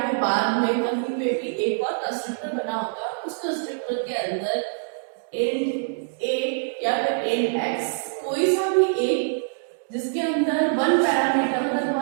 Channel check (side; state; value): left; silent; digital silence